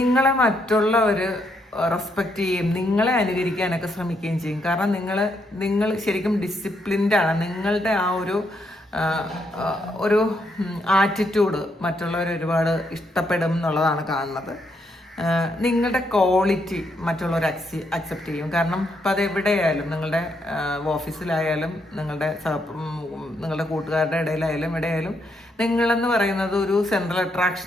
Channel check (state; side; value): normal; both; correlation 0.76